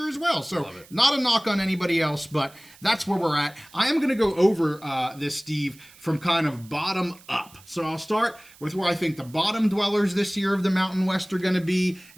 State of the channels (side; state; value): right; noise; hiss, 24 dB below the sound